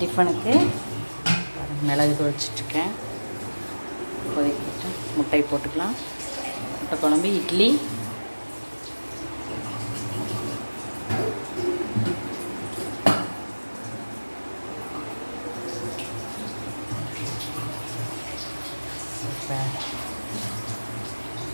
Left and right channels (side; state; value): both; inverted; correlation -1.00